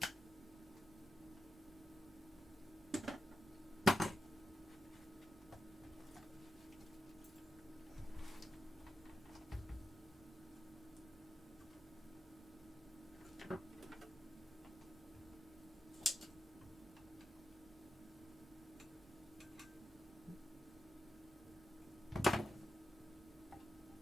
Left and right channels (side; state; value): both; normal; correlation 0.88